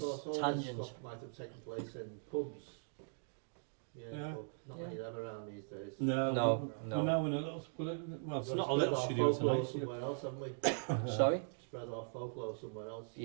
Of course, all Tangent. this stuff might have taken place in pubs. Yeah. Yeah. But not many of them around these days. No, No, we're no. now in a little, well, it's We've got not to a little spread our studio folklore tonight. somewhere else, haven't we? Sorry? Spread our folklore somewhere else.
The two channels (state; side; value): silent; left; digital silence